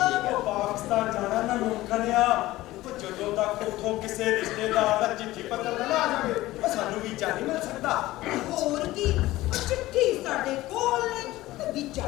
ਉਹ ਪਾਕਿਸਤਾਨ ਜਾਣਾ ਨਾ ਮੁਮਕਨ ਆ। ਉਹ ਜਦੋਂ ਤੱਕ ਉੱਥੋਂ ਕਿਸੇ ਰਿਸ਼ਤੇਦਾਰ ਦਾ ਚਿੱਠੀ ਪੱਤਰ ਨਾ ਆ ਜਾਵੇ, ਉਹ ਸਾਨੂੰ ਵੀਜ਼ਾ ਨਹੀਂ ਮਿਲ ਸਕਦਾ। ਹੋਰ ਕੀ, ਉਹ ਚਿੱਠੀ ਸਾਡੇ ਕੋਲ ਨੇ ਤੇ ਵੀਜ਼ਾ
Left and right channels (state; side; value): quieter; right; 17.2 dB